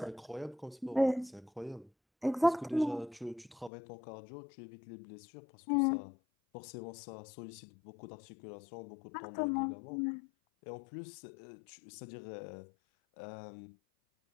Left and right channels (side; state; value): right; drops out; at 3.7 s